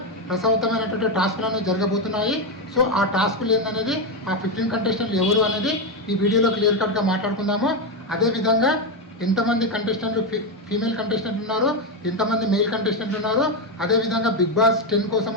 రసవత్తమైనటువంటి టాస్కులు అనేవి జరగబోతున్నాయి. సో ఆ టాస్కులు ఏందనేది, ఆ 15 కంటెస్టెంట్లు ఎవరు అనేది ఈ వీడియోలో క్లియర్ కట్గా మాట్లాడుకుందాము. అదేవిధంగా ఎంతమంది కంటెస్టెంట్లు ఫీమేల్ కంటెస్టెంట్లు ఉన్నారు, ఎంతమంది మెయిల్ కంటెస్టెంట్లు ఉన్నారు, అదేవిధంగా బిగ్ బాస్ 10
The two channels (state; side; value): normal; both; correlation 0.08